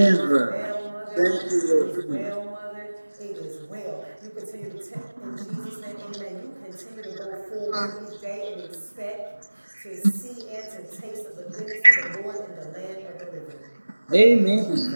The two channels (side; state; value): both; inverted; correlation -1.00